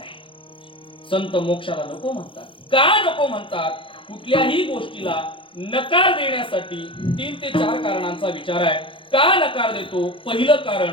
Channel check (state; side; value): late; right; 0.25 ms